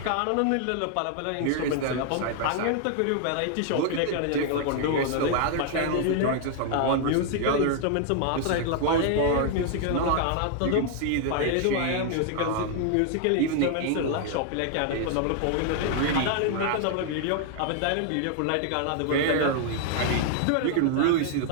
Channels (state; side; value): different; both; correlation 0.00